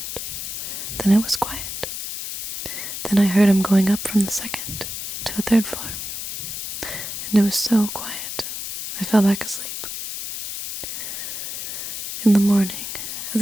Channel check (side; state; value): left; noise; hiss, 6 dB below the sound